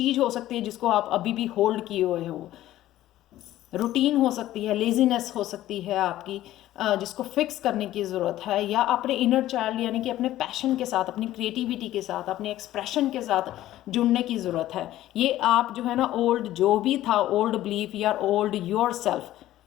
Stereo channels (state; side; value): quieter; right; 14.3 dB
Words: हो सकती है जिसको आप अभी भी होल्ड किए हुए हो। रूटीन हो सकती है, लेजीनेस हो सकती है आपकी, जिसको फिक्स करने की ज़रूरत है, या अपने इनर चाइल्ड यानी कि अपने पैशन के साथ, अपनी क्रिएटिविटी के साथ, अपने एक्सप्रेशन के साथ जुड़ने की ज़रूरत है। ये आप जो है ना ओल्ड जो भी था, ओल्ड बिलीफ या ओल्ड योर सेल्फ,